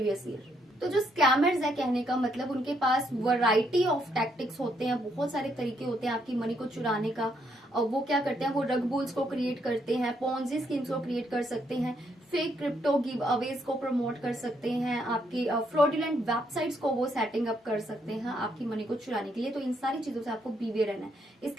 year. तो जो स्कैमर्स है, कहने का मतलब उनके पास वैरायटी ऑफ टैक्टिक्स होते हैं, बहुत सारे तरीके होते हैं आपकी मनी को चुराने का। और वो क्या करते हैं, वो रग बुल्स को क्रिएट करते हैं, पोंजी स्कीम्स को क्रिएट कर सकते हैं, फेक क्रिप्टो गिव अवेज को प्रमोट कर सकते हैं, आपकी फ्रॉडुलेंट वेबसाइट्स को वो सेटिंग अप कर सकते हैं आपकी मनी को चुराने के लिए। तो इन सारी चीजों से आपको बीवेयर रहना है।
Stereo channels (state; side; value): normal; both; correlation 0.74